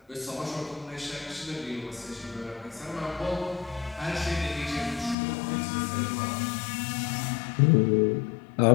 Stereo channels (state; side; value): drops out; right; at 5.2 s